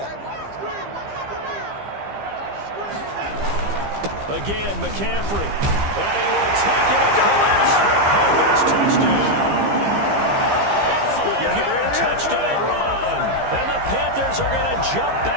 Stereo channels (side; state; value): left; late; 15 ms